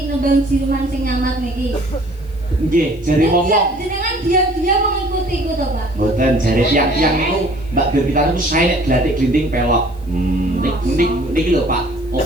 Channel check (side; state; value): left; noise; hiss, 29 dB below the sound